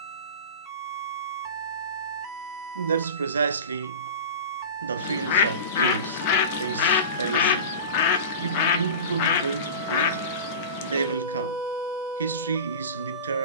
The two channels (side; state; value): both; inverted; correlation -0.32